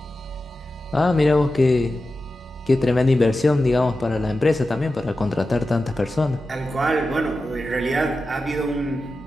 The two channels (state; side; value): normal; both; correlation 0.92